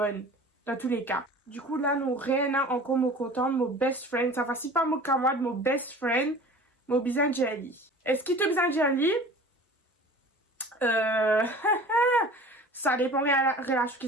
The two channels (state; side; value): normal; both; correlation 0.42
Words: dans tous les cas. Du coup là nous rien encore me content mon best friend, ça va si pas mon camarade, mon best friend, mon besoin jelly. Est-ce qu'il te besoin jelly? Ça dépend de la relation